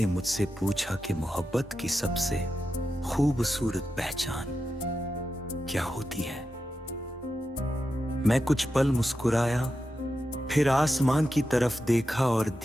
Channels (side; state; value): both; normal; correlation 0.89